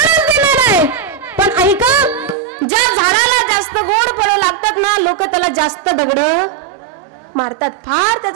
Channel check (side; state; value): left; drops out; at 2.4 s